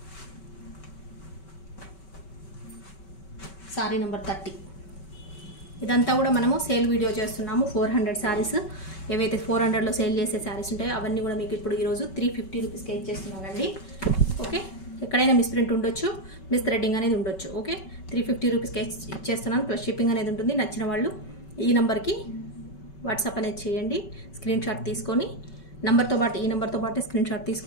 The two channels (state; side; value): late; right; 5.2 ms